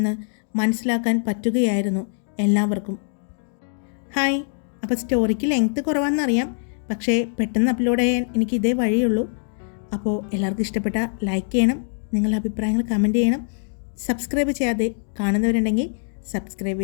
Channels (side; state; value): right; silent; 63 dB below the other